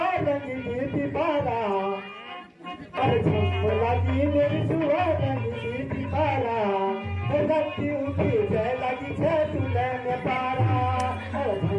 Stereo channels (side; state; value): both; identical; correlation 1.00